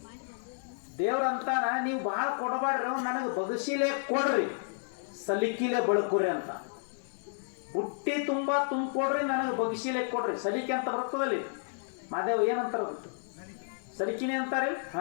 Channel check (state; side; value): silent; right; 57 dB below the other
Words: ದೇವ್ರಂತಾನ ನೀವು ಭಾಳ ಕೊಡಬಾಡ್ರಿ, ನನಗೆ ಬಗಸಿಲೆ ಕೊಡ್ರಿ, ಸಲಿಕಿಲೆ ಬಳಕುರಿ ಅಂತ. ಬುಟ್ಟಿ ತುಂಬ ತುಂಬಿಕೊಡ್ರಿ, ನನಗೆ ಬಗಸಿಲೆ ಕೊಡ್ರಿ. ಸಲಿಕೆ ಅಂತ ಬರ್ತದಲ್ಲಿ ಮಾದೇವ್ ಏನಂತಾರ ಗೊತ್ತು? ಸಲಿಕಿನೇ ಅಂತಾರೆ.